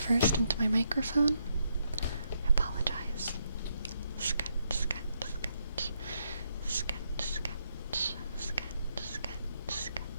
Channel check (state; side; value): inverted; both; correlation -0.78